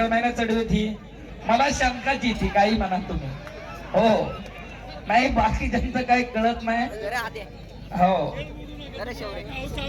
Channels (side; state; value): both; identical; correlation 1.00